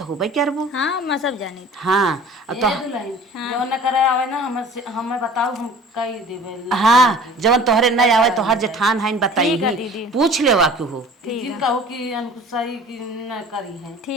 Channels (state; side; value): normal; both; correlation 0.46